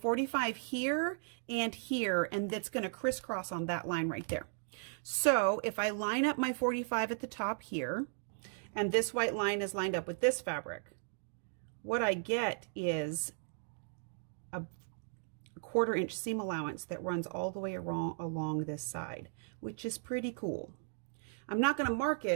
here, and that's going to crisscross on that line right there. So if I line up my 45 at the top here, and this white line is lined up with this fabric, what I get is a 1/4 inch seam allowance that runs all the way along this side, which is pretty cool. I'm not going to mark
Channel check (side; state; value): left; silent; digital silence